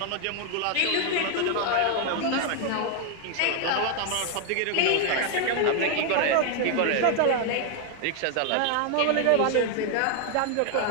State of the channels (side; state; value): both; different; correlation 0.00